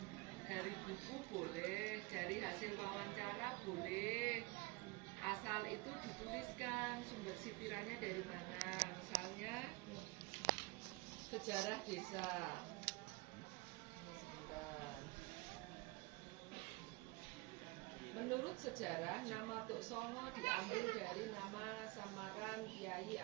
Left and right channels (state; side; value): quieter; left; 24.8 dB